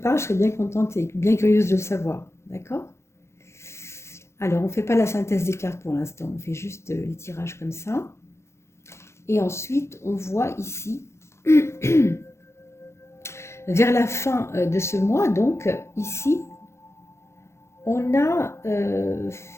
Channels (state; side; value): late; right; 0.13 ms